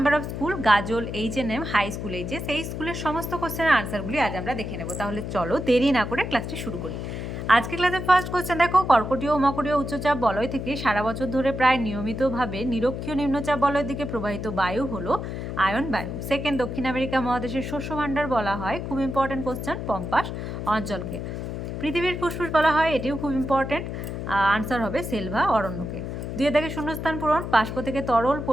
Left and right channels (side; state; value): left; noise; hum, 5 dB below the sound